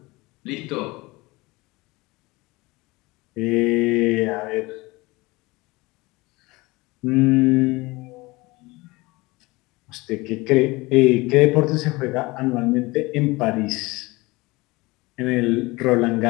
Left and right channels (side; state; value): right; quieter; 22.5 dB